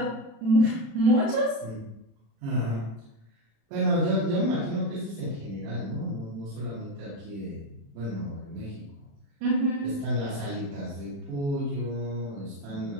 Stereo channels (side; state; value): left; late; 36 ms